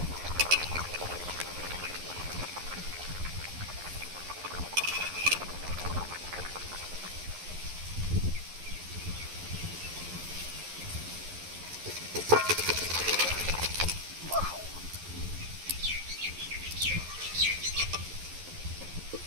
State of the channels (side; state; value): left; late; 11 ms